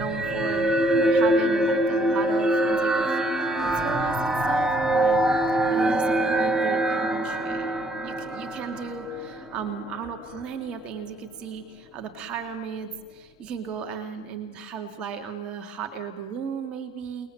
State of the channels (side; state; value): both; normal; correlation 0.66